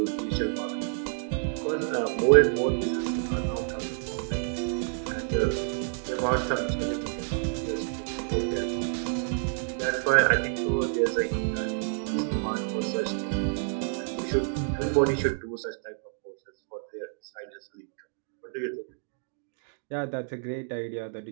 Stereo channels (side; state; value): left; silent; digital silence